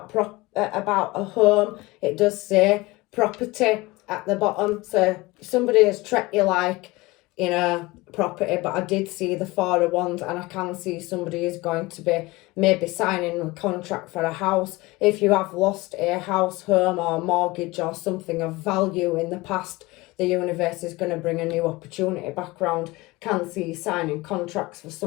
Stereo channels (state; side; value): quieter; right; 21.7 dB